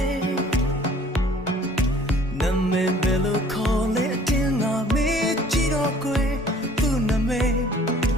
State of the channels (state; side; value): normal; both; correlation 0.54